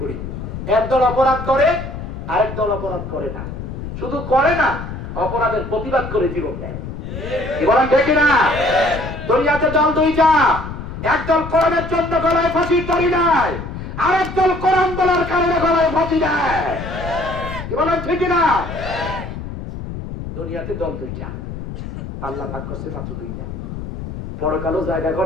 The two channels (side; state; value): left; noise; rumble, 8 dB below the sound